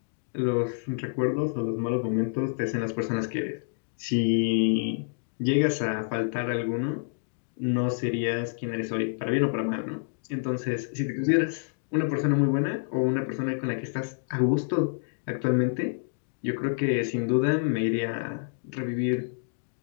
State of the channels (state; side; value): silent; right; digital silence